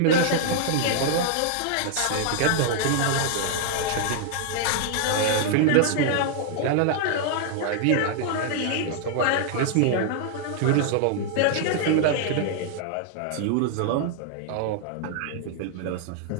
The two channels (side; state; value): both; different; correlation -0.01